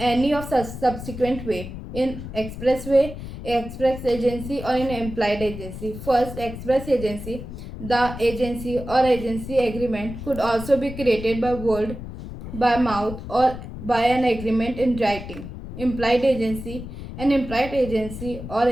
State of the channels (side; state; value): left; noise; rumble, 10 dB below the sound